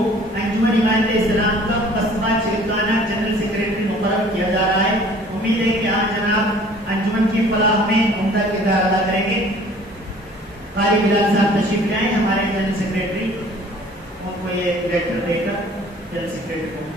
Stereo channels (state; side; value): normal; both; correlation 0.52